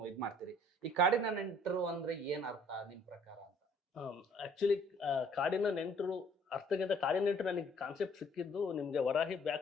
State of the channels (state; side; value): normal; both; correlation 0.59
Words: ಇದ್ ಮಾಡ್ತೀರಿ. ಈ ಕಾಡಿನ ನೆಂಟರು ಅಂದ್ರೆ ಏನ್ ಅರ್ಥ ನಿಮ್ ಪ್ರಕಾರ ಅಂತ? ಆಕ್ಚುಲಿ ಕಾಡಿನ ನೆಂಟರು ಅರ್ಥಕ್ಕಿಂತ ಕಾಡಿನ ನೆಂಟರು ನನಗೆ ಕಾನ್ಸೆಪ್ಟ್ ಸಿಕ್ಕಿದ್ದು ನಿಮ್ಗೆ ವರಾಹಿ